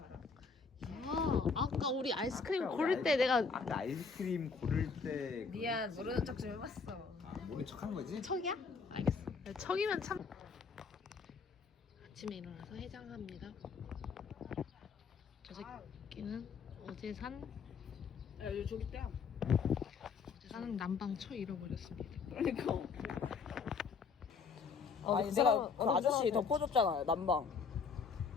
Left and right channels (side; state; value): right; quieter; 5.2 dB